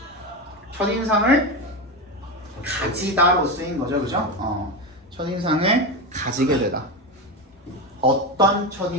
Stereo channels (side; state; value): both; normal; correlation 0.17